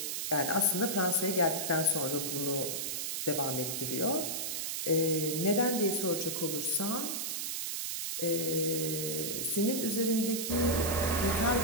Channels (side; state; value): right; noise; hiss, 2 dB below the sound